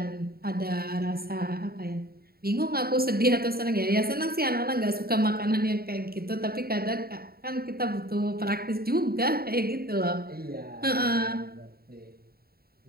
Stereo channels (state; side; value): late; left; 0.45 ms